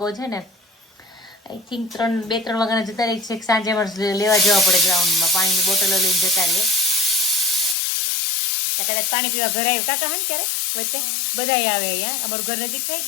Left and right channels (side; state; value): right; drops out; at 7.8 s